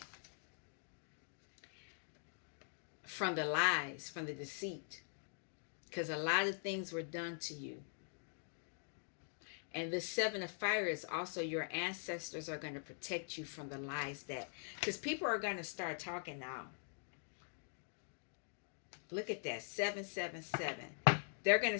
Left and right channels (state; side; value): silent; right; digital silence